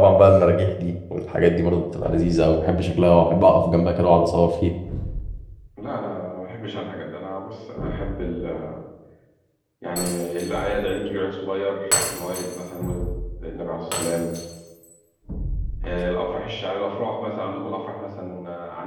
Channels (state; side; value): identical; both; correlation 1.00